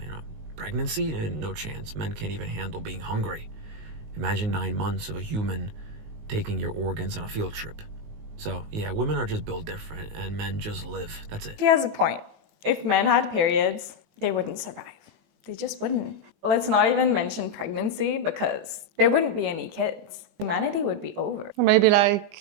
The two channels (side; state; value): left; late; 19 ms